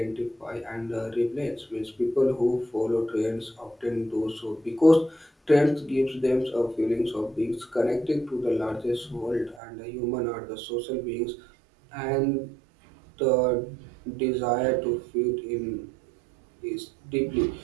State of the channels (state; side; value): drops out; left; at 9.6 s